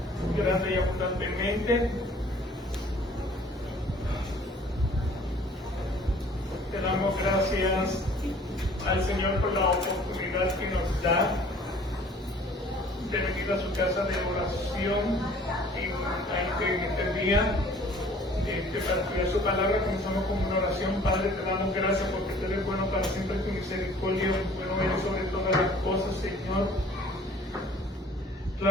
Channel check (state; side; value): normal; both; correlation 0.53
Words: grande y abundantemente. Te damos gracias al Señor por la oportunidad que nos da de venir a su casa de oración en este día. Para estudiar su palabra, comenzamos con una oración. Padre, te damos gracias porque tú eres bueno para siempre, tu misericordia, bueno eres sobre todas las cosas, Señor.